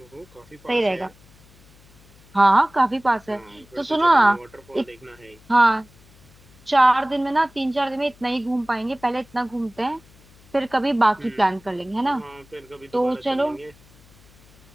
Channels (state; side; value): noise; left; hum, 27 dB below the sound